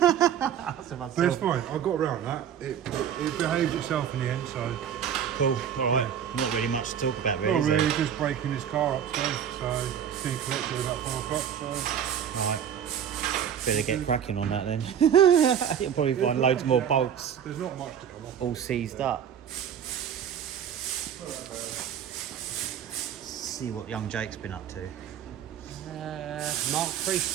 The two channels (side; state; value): left; quieter; 8.8 dB